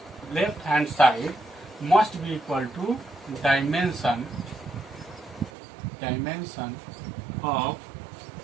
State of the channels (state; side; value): drops out; left; at 5.5 s